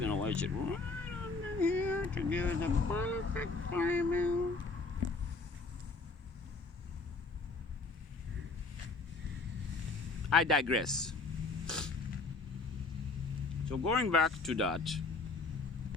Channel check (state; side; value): quieter; right; 3.8 dB